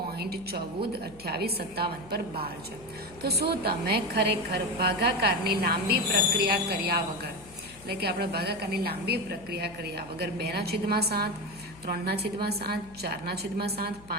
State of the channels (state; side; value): noise; left; hum, 21 dB below the sound